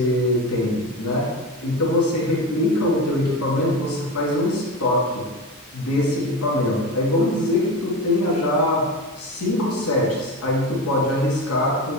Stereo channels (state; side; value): normal; both; correlation 0.25